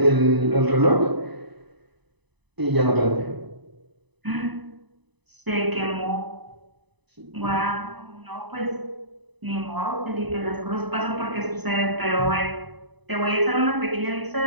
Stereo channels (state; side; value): late; left; 1.0 ms